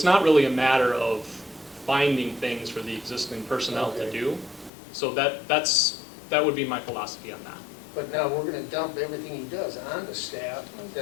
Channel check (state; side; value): drops out; right; at 4.7 s